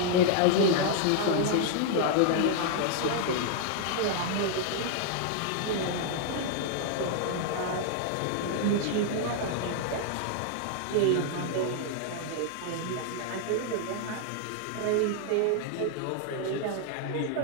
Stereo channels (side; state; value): both; different; correlation 0.00